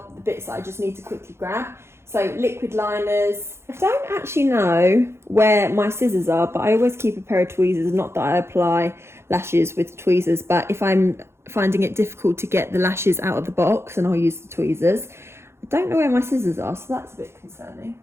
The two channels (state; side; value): late; left; 0.12 ms